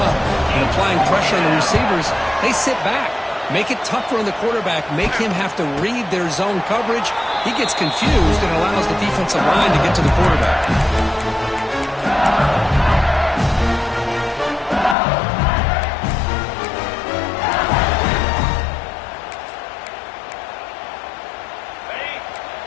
and applying pressure on the receivers, they sit back, make it tougher on the quarterback, make him have to read their zone coverage. He gets confused and allows the defensive line to get to the quarterback.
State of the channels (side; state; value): right; drops out; at 15.0 s